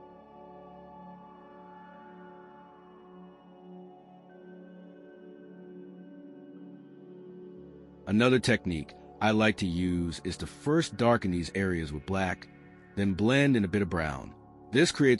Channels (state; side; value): identical; both; correlation 1.00